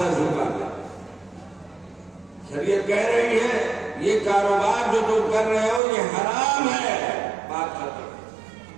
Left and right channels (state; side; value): drops out; left; at 5.8 s